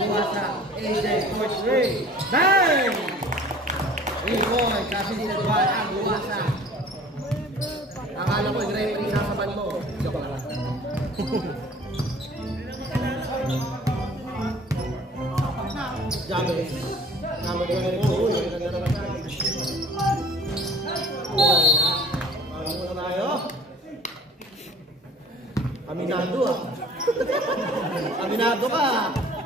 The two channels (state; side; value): normal; both; correlation 0.48